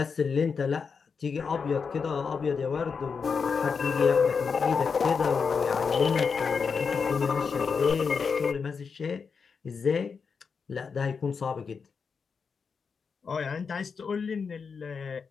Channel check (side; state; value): right; quieter; 5.6 dB